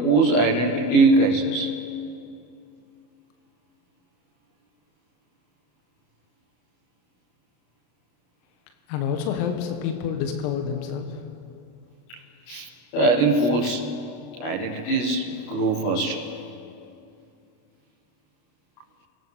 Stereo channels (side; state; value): right; late; 33 ms